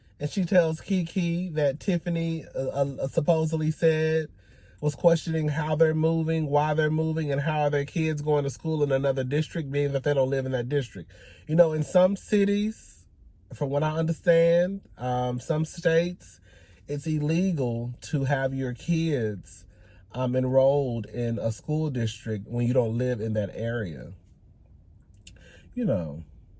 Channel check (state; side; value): identical; both; correlation 1.00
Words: and she tells Kiki that Tiffany supposedly said was questioning how they're moving, why they're moving, and how are their kids going to school in another district, being that they don't live in that district. You know, in some cities, from what I understand, some states, it's illegal to have your kids enrolled in a school district when you don't live in that area. You know,